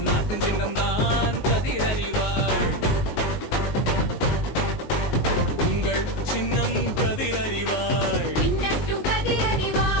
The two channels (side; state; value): right; late; 19 ms